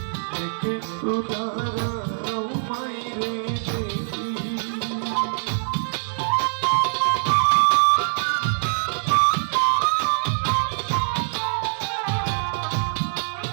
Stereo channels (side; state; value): left; silent; digital silence